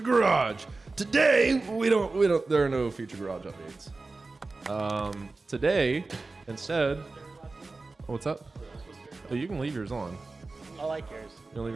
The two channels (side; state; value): left; quieter; 3.6 dB